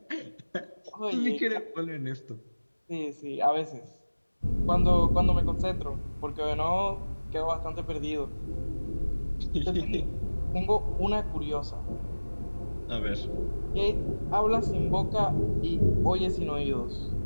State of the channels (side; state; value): both; inverted; correlation -1.00